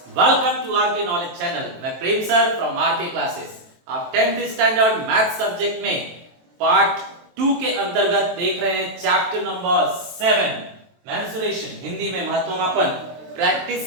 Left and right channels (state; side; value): late; left; 23 ms